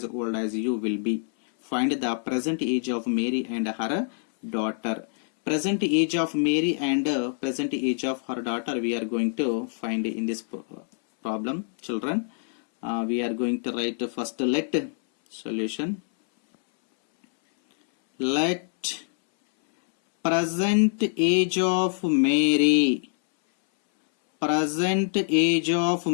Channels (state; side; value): silent; right; 61 dB below the other